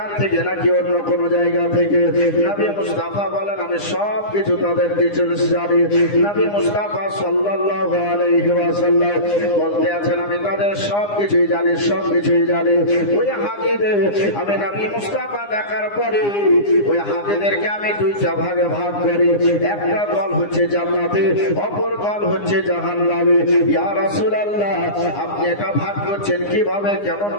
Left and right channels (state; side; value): late; right; 9.8 ms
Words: থেকে নাকি অন্য কোনো জায়গা থেকে। নবী মুস্তাফা বলেন আমি সব কিছু তাদের ডিটেইলস জানি। নবী মুস্তাফা সাল্লাল্লাহু আলাইহি ওয়াসাল্লাম বলতে আছেন আমি তাদের সবকিছুই জানি, সবকিছুই জানি। ওই হাজীদের আমি নবী মুস্তাফা দেখার পরে ওই হাজীদেরকে আমি দুইটা ভাগে ভাগ করি, একটা দল হচ্ছে জান্নাতে, অপর দল হচ্ছে জাহান্নামে। ইয়া রাসূলুল্লাহ আপনি এটা ভাগ করছেন কিভাবে, কেমন